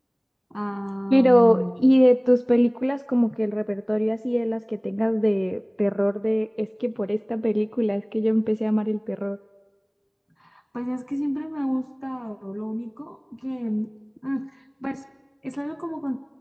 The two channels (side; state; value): both; identical; correlation 1.00